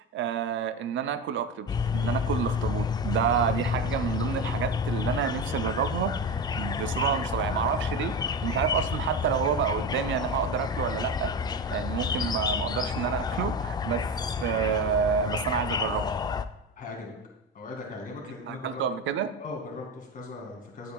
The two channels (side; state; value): both; normal; correlation 0.22